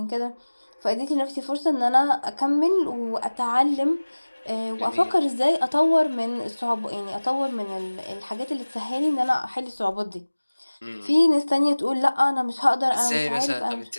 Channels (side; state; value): both; inverted; correlation -1.00